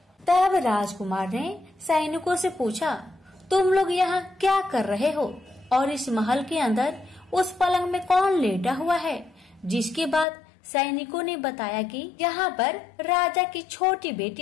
तब राजकुमार ने सैनिकों से पूछा, तुम लोग यहाँ क्या कर रहे हो और इस महल के अंदर उस पलंग में कौन लेटा हुआ है? जिसके बाद सैनिकों ने बताया कि यहाँ पर राजा की छोटी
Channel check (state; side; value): drops out; right; at 10.2 s